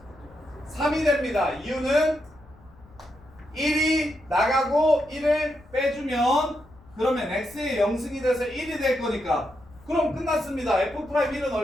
3이 됩니다. 이유는 1이 나가고 1을 빼주면 그러면 x의 0승이 돼서 1이 될 거니까. 그럼 끝났습니다. f'1은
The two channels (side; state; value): left; noise; rumble, 25 dB below the sound